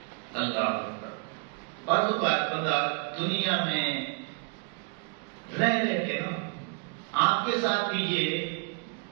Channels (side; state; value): left; quieter; 36.2 dB